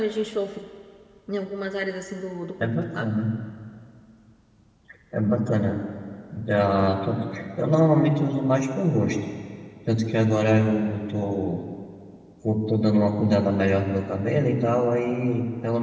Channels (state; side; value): identical; both; correlation 1.00